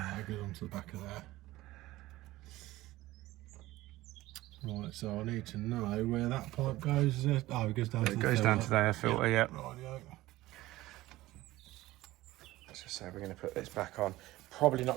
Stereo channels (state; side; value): quieter; left; 17.4 dB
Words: goes onto the back of there. Right, so I need to know where that pipe goes. Oh, it goes down to the filter. It goes down to the air filter, yeah. Rightio. Let's just say we're going to put this back on. Probably not